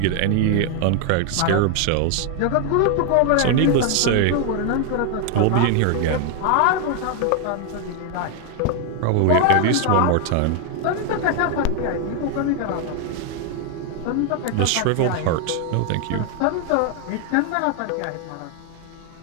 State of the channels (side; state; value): both; different; correlation 0.00